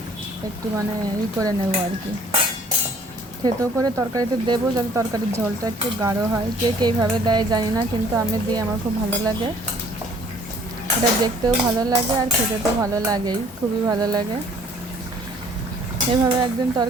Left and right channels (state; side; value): normal; both; correlation 0.57